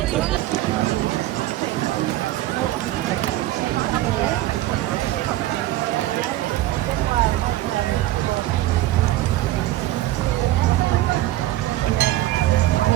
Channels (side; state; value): left; quieter; 15.7 dB